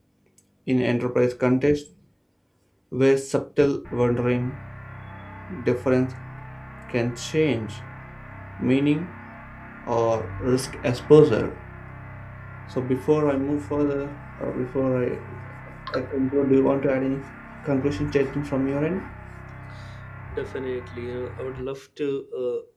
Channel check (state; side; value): identical; both; correlation 1.00